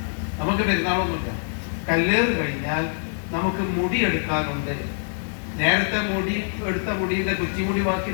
നമുക്ക് പെരുന്നാളൊന്നുമില്ല. കല്ലേറ് കഴിഞ്ഞാൽ നമുക്ക് മുടി എടുക്കാനുണ്ട്. നേരത്തെ എടുത്ത മുടിയുടെ കുച്ചിമുടി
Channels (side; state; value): right; silent; 57 dB below the other